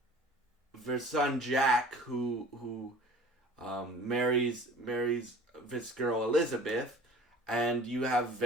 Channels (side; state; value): both; normal; correlation 0.44